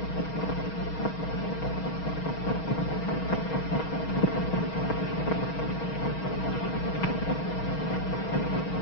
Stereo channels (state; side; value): late; right; 6.3 ms